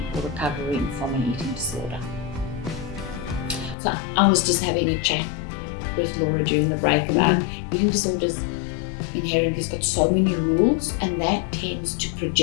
or recovering from an eating disorder? So I was just having a chat with Laura during the break about eating disorders inherently has got so many rules, and that tends to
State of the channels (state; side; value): drops out; right; at 3.8 s